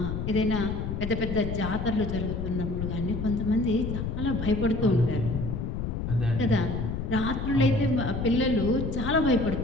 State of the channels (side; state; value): left; noise; rumble, 3 dB below the sound